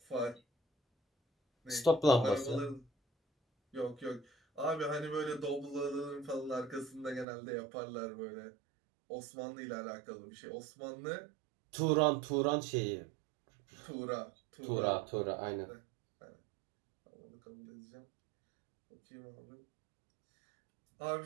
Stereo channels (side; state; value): left; drops out; at 7.2 s